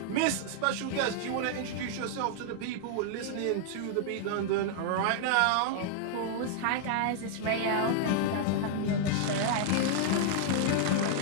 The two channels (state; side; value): different; both; correlation -0.01